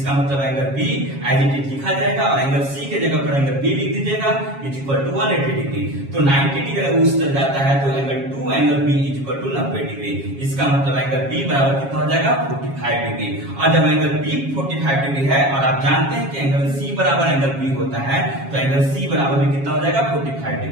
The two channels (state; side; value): late; left; 7.3 ms